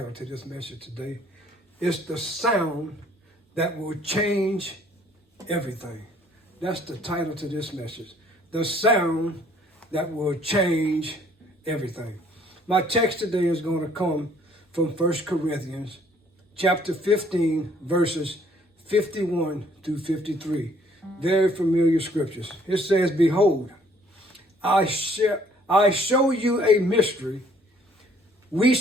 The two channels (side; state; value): both; normal; correlation 0.61